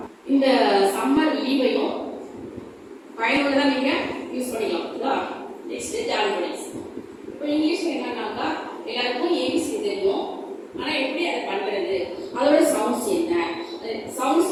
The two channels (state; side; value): identical; both; correlation 1.00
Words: இந்த சம்மர் லீவையும் பயனுள்ளதாக நீங்கள் யூஸ் பண்ணிக்கலாம். ஓகேவா? நெக்ஸ்ட் ஜாலிபடிஸ். இப்போ இங்கிலீஷில் என்னன்னாக்கா எல்லாருக்கும் ஏபிசி தெரியும். ஆனால் எப்படி அதை பண்ணுறது, அதோட சவுண்ட்ஸ் என்ன,